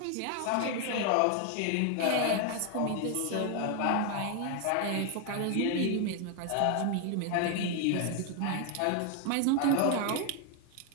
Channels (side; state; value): both; different; correlation 0.01